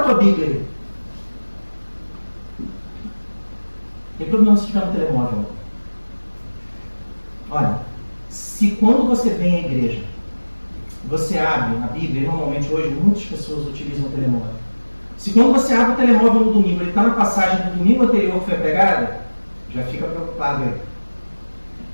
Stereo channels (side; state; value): both; inverted; correlation -1.00